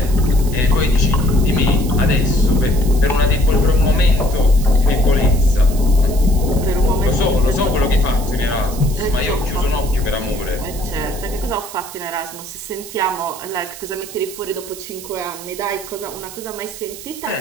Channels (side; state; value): right; noise; hiss, 14 dB below the sound